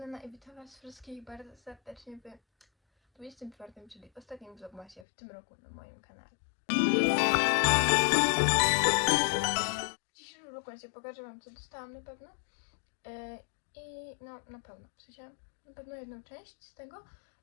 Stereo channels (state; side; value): drops out; right; at 5.1 s